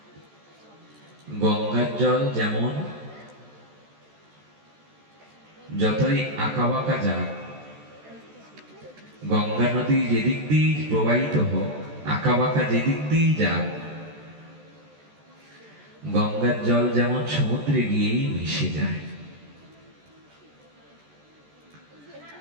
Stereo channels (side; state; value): left; late; 14 ms